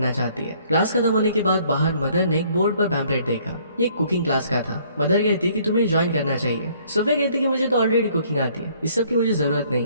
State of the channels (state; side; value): inverted; both; correlation -0.61